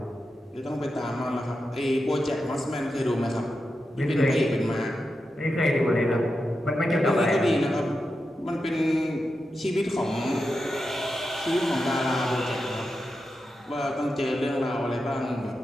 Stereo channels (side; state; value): both; normal; correlation 0.89